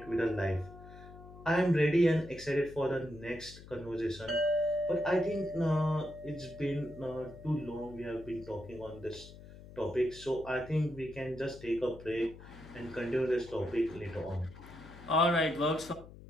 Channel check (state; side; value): noise; left; hum, 17 dB below the sound